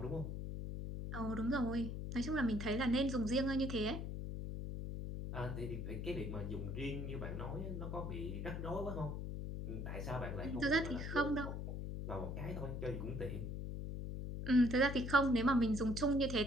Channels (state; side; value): noise; left; hum, 4 dB below the sound